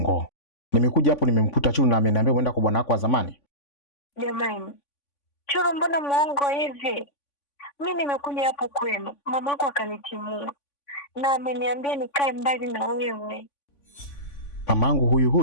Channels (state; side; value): late; right; 3.5 ms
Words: Nimekuja hapo nimemkuta Chulu na ameniambia uenda kwa bwana wako wa zamani. Jamani, Chulu mbona muongo hivi? Mimi nimekuja hapo kwenu, mamako akanitimua na ameniambia nikae mbali na wewe. Mamangu